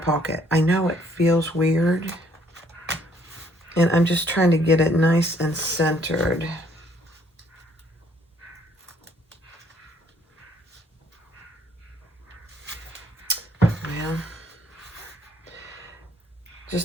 I know it feels weird, and I'm just trying to get it nice and centered. Well,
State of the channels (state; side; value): normal; both; correlation 0.65